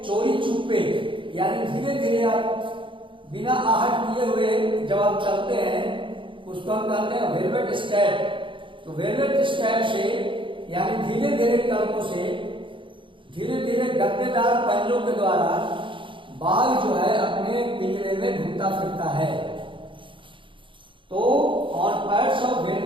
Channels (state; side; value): late; left; 0.24 ms